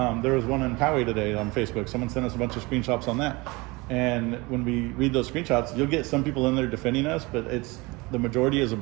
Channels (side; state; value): left; quieter; 24.4 dB